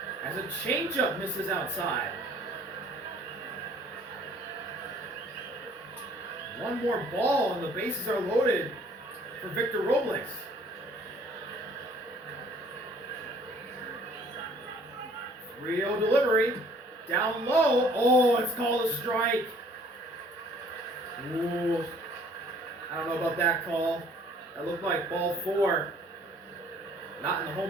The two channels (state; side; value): normal; both; correlation 0.57